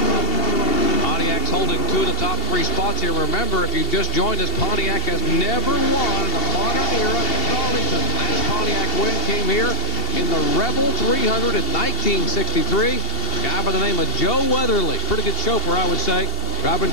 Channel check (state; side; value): late; right; 2.7 ms